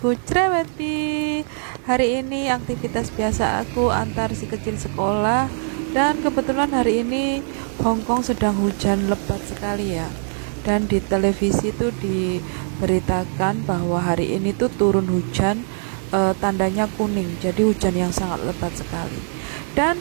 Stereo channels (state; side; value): silent; left; digital silence